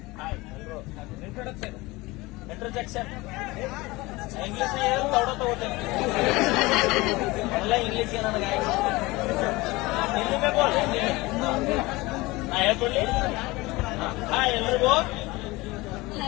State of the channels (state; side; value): quieter; right; 21.7 dB